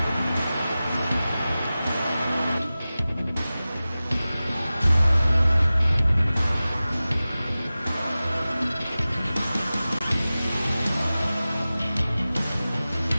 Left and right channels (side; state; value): both; inverted; correlation -0.96